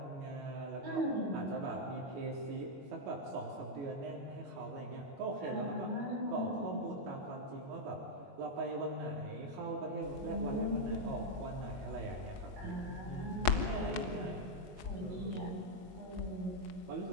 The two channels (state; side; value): late; left; 21 ms